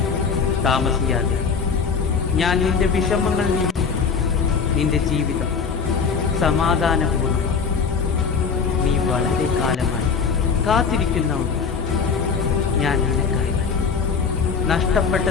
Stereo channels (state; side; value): quieter; right; 5.6 dB